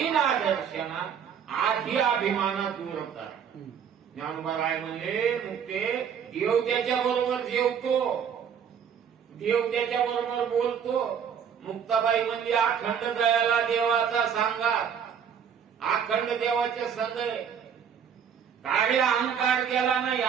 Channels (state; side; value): quieter; left; 7.8 dB